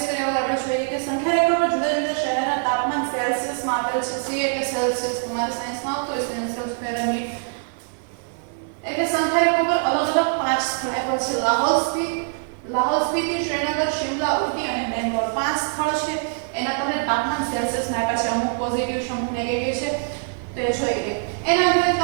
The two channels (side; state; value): left; silent; 63 dB below the other